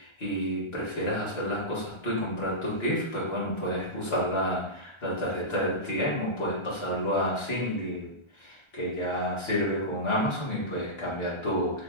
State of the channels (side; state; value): right; late; 1.3 ms